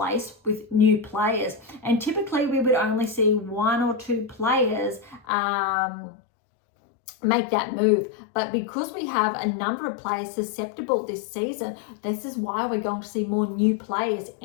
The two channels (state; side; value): drops out; right; at 5.2 s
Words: with new players. And typically we would only see 1 or 2 players make that move. But because we have a number of players susceptible this season, this is why we're going to see more new players